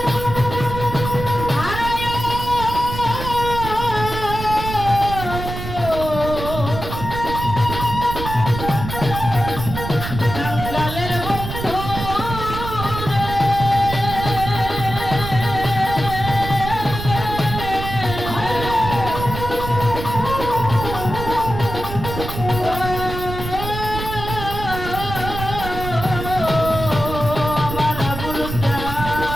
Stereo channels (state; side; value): noise; right; rumble, 7 dB below the sound